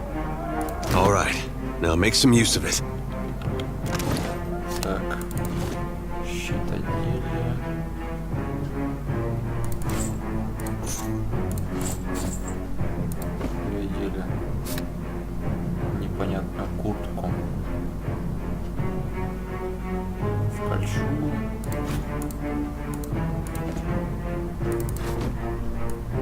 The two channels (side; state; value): both; identical; correlation 1.00